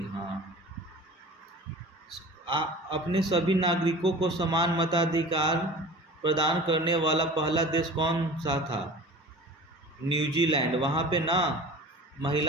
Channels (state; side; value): normal; both; correlation 0.40